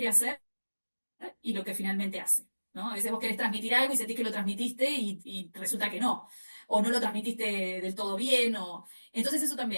hacer y lo que finalmente hace. ¿No? A veces vos querés transmitir algo y sentís que lo transmitiste y resulta que no, o no lo transmitiste del todo bien, o... Entonces eso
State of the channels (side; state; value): both; inverted; correlation -1.00